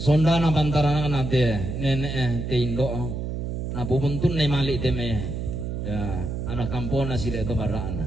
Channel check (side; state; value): right; noise; hum, 4 dB below the sound